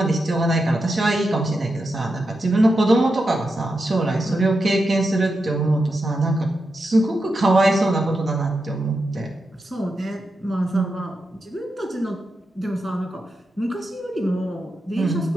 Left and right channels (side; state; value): both; normal; correlation 0.88